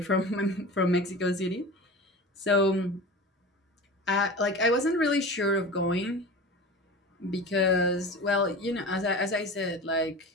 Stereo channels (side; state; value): both; normal; correlation 0.33